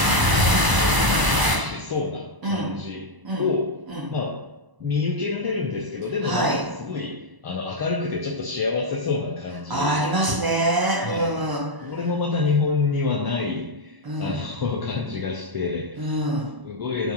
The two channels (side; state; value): left; late; 1.0 ms